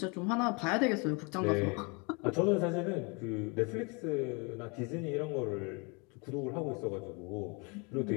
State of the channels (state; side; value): quieter; right; 31.4 dB